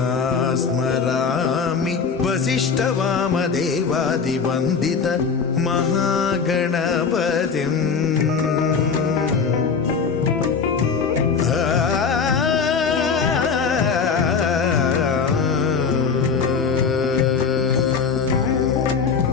स्मरामि वसिष्ठवामदेवादिवन्दित महागणपतिम्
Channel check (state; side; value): quieter; right; 5.7 dB